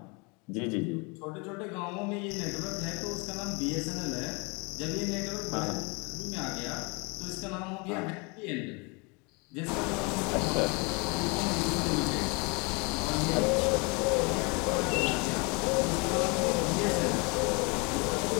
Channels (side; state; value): right; quieter; 30.4 dB